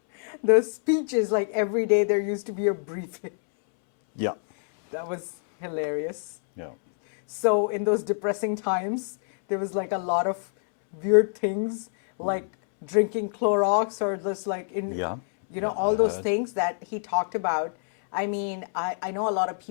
speeches like every day. There used to be a briefing. Yeah. That was hilarious. Yeah. So in those depressing times, there was like a lot of weird things like drinking Clorox or just like Yeah. you know, all those things that he talked about. I mean, I know a lot of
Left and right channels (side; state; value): right; silent; 61 dB below the other